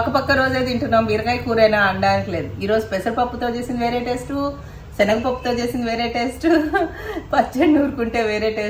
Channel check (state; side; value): identical; both; correlation 1.00